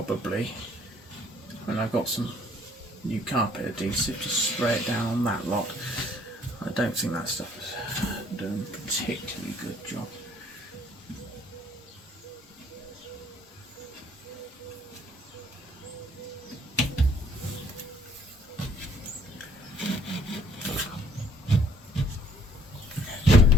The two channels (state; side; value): normal; both; correlation 0.61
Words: when I've got some new carpet adhesive, just spray it down on that lot. I don't think that stuff is doing a particularly good job.